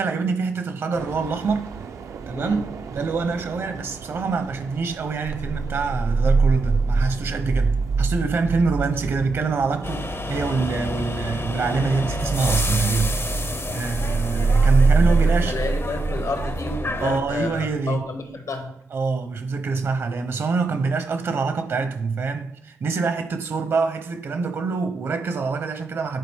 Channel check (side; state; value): left; quieter; 3.4 dB